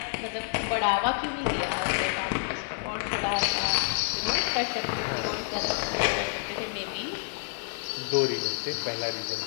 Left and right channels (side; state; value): right; silent; 59 dB below the other